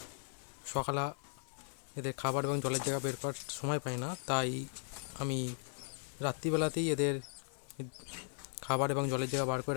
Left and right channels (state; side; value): silent; right; digital silence